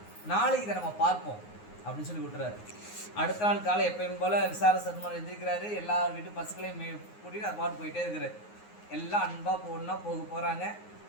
நாளைக்கு இதை நம்ம பார்ப்போம் அப்படின்னு சொல்லி விட்டுறாரு. அடுத்த நாள் காலை எப்பயும் போல் விசார சருமன் எந்திரிக்கிறாரு. எல்லா வீட்டு பசுக்களையும் கூட்டிகிட்டு அது பாட்டு போயிட்டே இருக்கிறார். எல்லாம் அன்பாக ஒன்றா போகிறாங்க.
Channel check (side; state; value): right; late; 9.5 ms